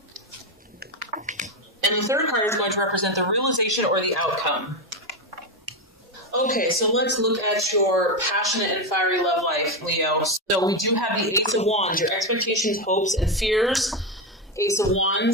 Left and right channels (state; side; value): normal; both; correlation 0.11